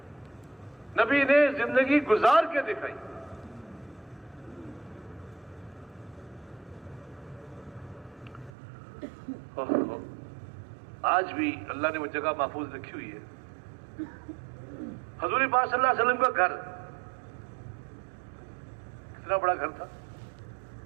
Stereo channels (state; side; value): drops out; left; at 8.5 s